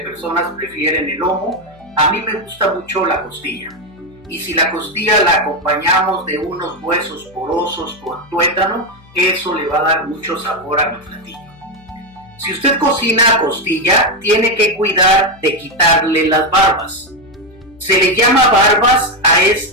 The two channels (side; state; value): left; noise; hum, 26 dB below the sound